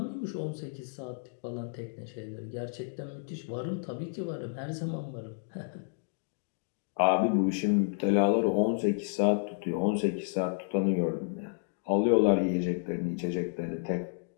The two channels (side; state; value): right; silent; digital silence